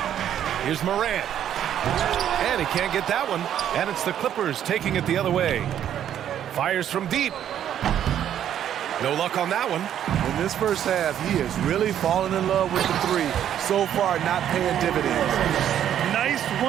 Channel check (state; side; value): quieter; left; 10.3 dB